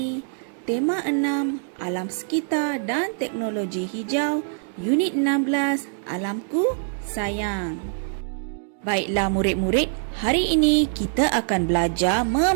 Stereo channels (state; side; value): silent; left; digital silence